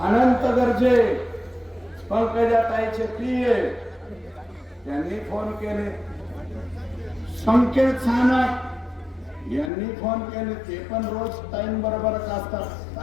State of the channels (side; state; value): right; drops out; at 9.7 s